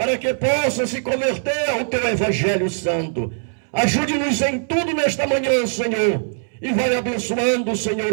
que possa se converter ao teu Evangelho Santo. Ajude-nos em tudo nesta manhã, Senhor, e vai abençoando, Senhor,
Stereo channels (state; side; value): silent; left; 65 dB below the other